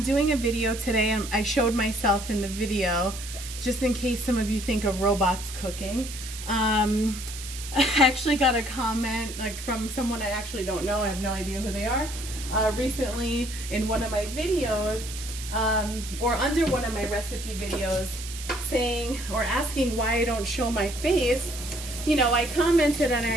doing a video today and I showed myself in the video just in case some of you think of robots cooking. I actually got a comment from someone I actually don't know. I have no idea who they are. Recently in one of my videos or under one of my recipe videos saying or asking why I don't show my face. You know, I commented and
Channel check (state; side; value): noise; right; hiss, 11 dB below the sound